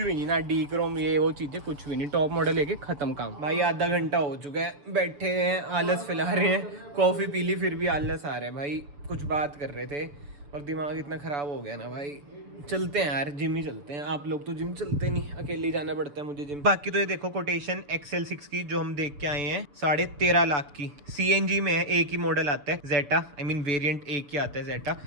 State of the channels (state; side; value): late; left; 6.9 ms